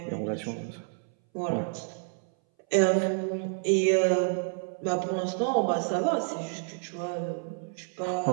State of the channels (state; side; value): silent; left; 58 dB below the other